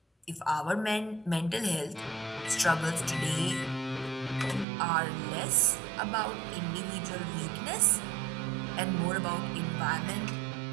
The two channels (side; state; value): left; drops out; at 4.7 s